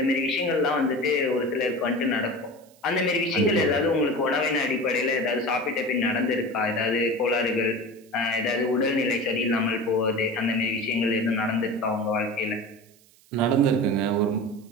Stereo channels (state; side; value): noise; right; hiss, 29 dB below the sound